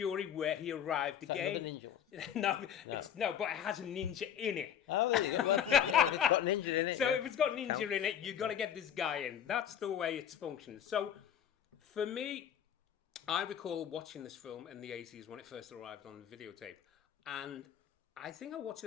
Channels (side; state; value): right; quieter; 9.3 dB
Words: where he arrived again. Ninja? No, but it has a ninja in it. Oh, there you go. Well, yeah, if it's got ninja in it. So if it's got ninja in it, you've got to get this guy in. That's the way it's functioned. So for me, I recall watching this film in the 80s when it first arrived on videotape. And I think I watched